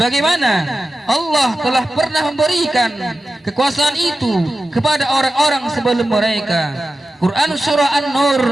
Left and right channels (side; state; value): both; normal; correlation 0.93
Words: Allah telah pernah memberikan kekuasaan itu kepada orang-orang sebelum mereka. Quran surah An-Nur